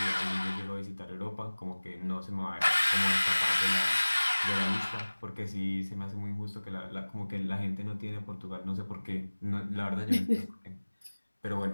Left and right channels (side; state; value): both; inverted; correlation -1.00